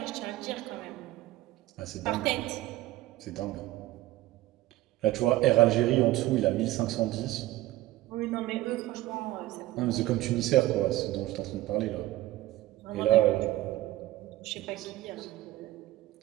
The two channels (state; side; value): quieter; left; 16.5 dB